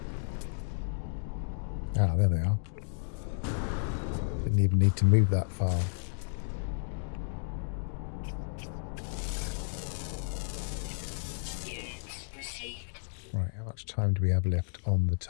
Ah, there they are. Didn't even need to move that far. Right, how much time do we have left on the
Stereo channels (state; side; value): silent; right; digital silence